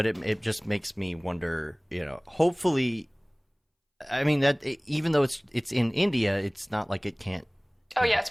it just makes me wonder, hopefully, I mean, that even though it's in India, it's not like it can't. Oh yeah, it's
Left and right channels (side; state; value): both; identical; correlation 1.00